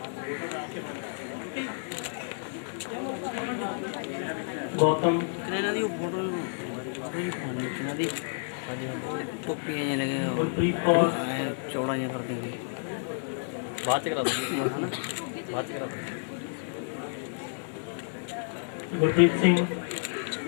Gautam, टोपियाँ लगे गुरप्रीत कौर, चौड़ा कर देंगे बात करा बात करा गुरप्रीत सिंह,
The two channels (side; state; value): right; silent; digital silence